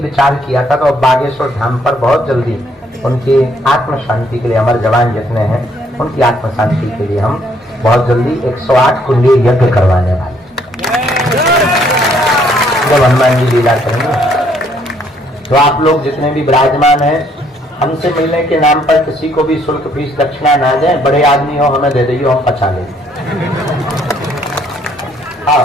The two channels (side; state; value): both; normal; correlation 0.67